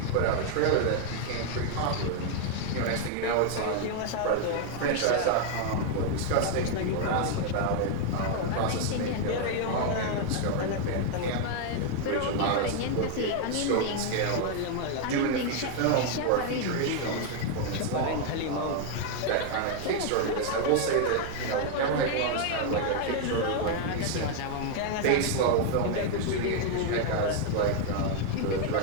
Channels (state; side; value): different; both; correlation 0.00